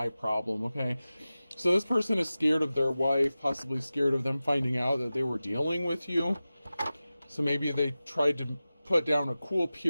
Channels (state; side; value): inverted; both; correlation -0.95